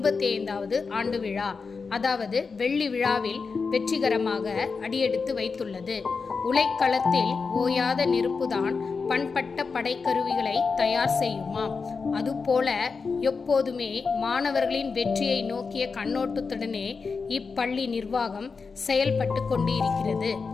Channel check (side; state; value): right; quieter; 4.9 dB